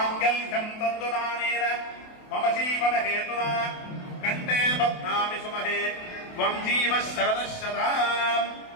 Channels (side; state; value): right; late; 28 ms